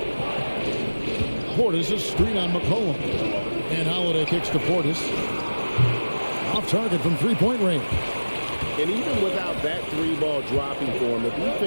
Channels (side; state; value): both; inverted; correlation -1.00